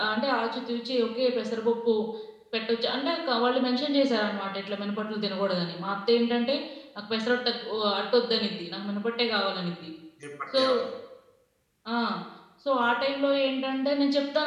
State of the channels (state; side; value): identical; both; correlation 1.00